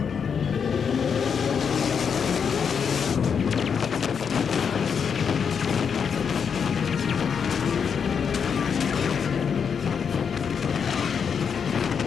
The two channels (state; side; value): quieter; right; 6.7 dB